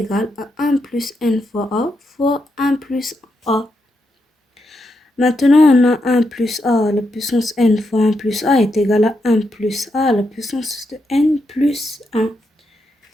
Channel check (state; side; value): normal; both; correlation 0.83